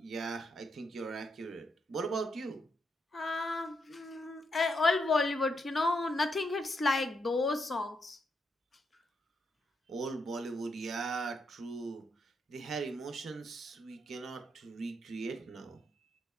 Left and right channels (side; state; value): both; normal; correlation 0.80